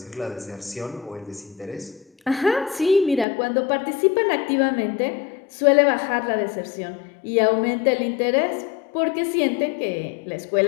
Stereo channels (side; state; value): right; drops out; at 3.2 s